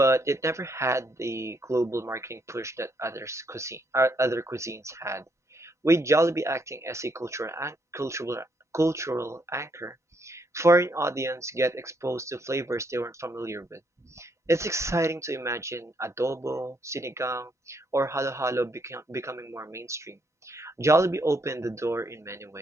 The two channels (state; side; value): normal; both; correlation 0.74